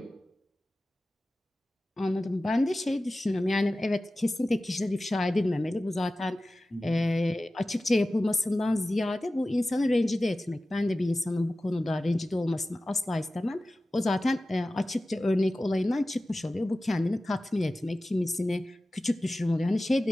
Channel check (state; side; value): normal; both; correlation 0.96